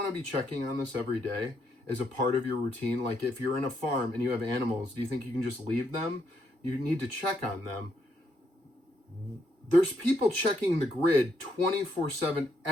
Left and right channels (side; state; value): left; late; 2.3 ms